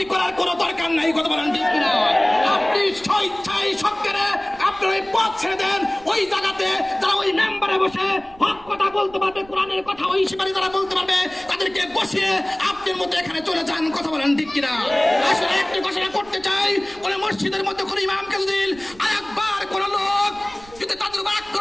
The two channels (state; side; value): noise; right; rumble, 23 dB below the sound